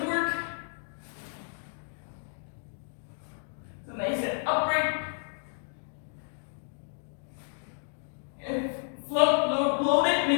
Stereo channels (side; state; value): right; silent; digital silence